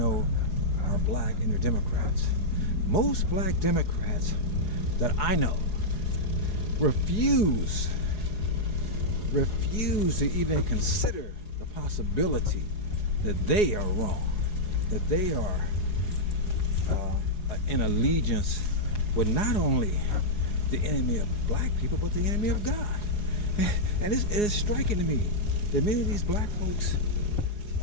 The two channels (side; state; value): right; late; 4.8 ms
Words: are black and they're Democrats. Most black Democrats that I know refuse to even consider possibility that they are wrong, that they are in allegiance with not only the enemy of black people, but the enemy of God. And it is striking to me that many of these black folks